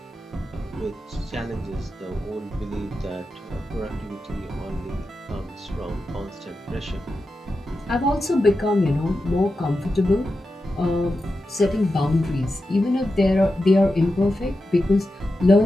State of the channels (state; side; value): normal; both; correlation 0.90